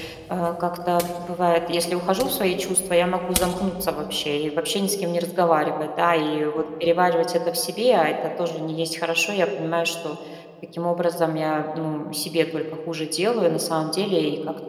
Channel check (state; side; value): identical; both; correlation 1.00